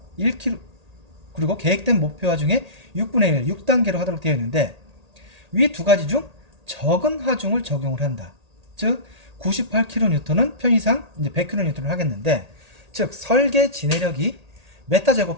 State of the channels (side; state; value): left; late; 1.8 ms